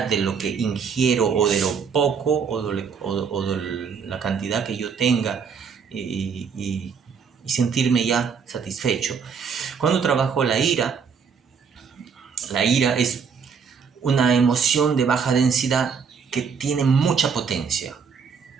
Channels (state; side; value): quieter; left; 6.2 dB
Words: de lo que ingiero o de lo poco o de la cantidad que yo tenga y sentirme ya satisfecho. Cuando trabajo la ira es una emoción de baja densidad que tiene mucha potencia.